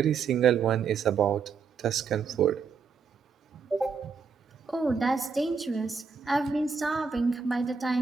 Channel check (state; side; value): quieter; left; 5.6 dB